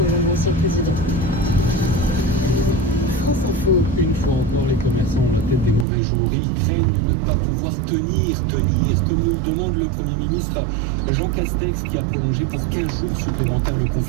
Hollande, ancien président. France Info. Une fois encore, les commerçants ont la tête des mauvais jours. Ils craignent de ne pas pouvoir tenir, comme nous demande le Premier ministre Jean Castex, qui a prolongé pour 15 jours supplémentaires le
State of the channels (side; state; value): left; drops out; at 5.9 s